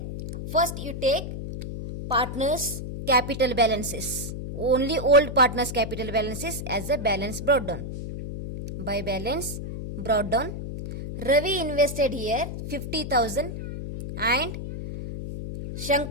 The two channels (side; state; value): left; noise; hum, 7 dB below the sound